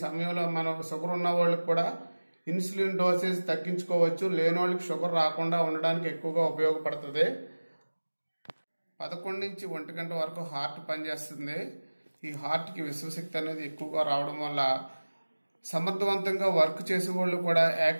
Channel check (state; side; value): inverted; both; correlation -1.00